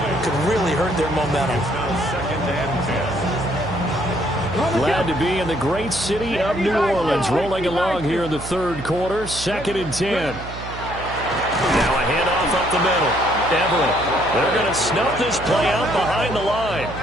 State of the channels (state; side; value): noise; right; hum, 11 dB below the sound